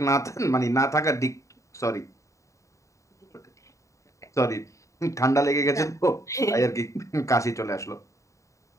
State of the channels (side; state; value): right; late; 0.15 ms